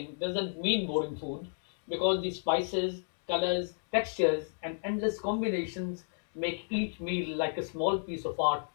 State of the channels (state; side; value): silent; right; digital silence